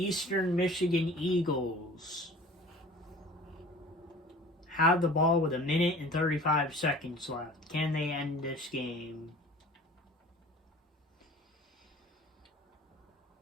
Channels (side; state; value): both; normal; correlation 0.45